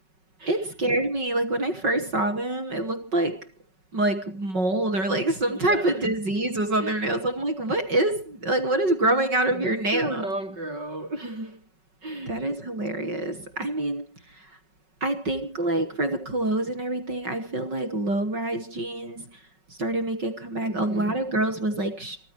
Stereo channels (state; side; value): late; left; 5.4 ms